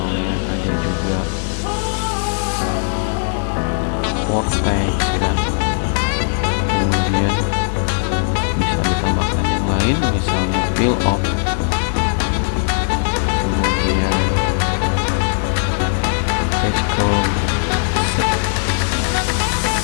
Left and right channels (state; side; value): silent; right; 67 dB below the other